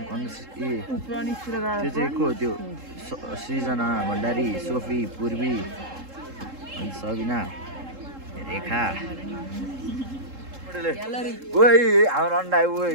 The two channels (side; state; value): left; late; 3.7 ms